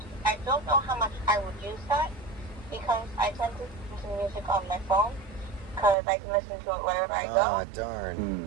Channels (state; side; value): drops out; left; at 6.0 s